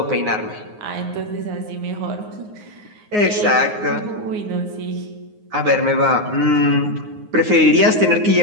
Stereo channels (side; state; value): left; late; 9.5 ms